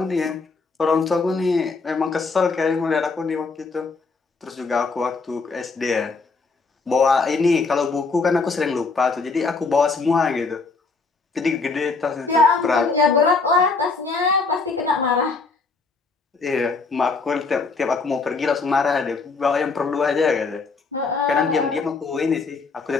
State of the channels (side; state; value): right; quieter; 4.3 dB